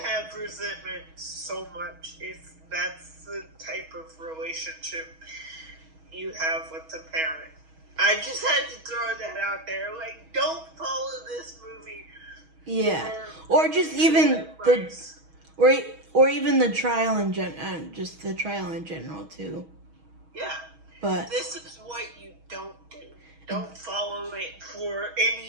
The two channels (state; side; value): late; left; 6.3 ms